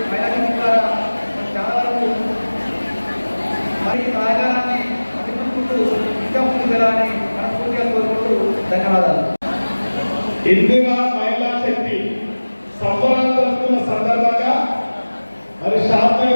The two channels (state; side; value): inverted; both; correlation -1.00